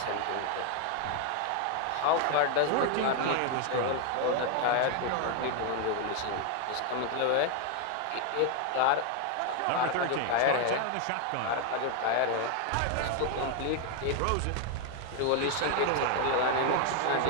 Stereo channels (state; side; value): different; both; correlation 0.01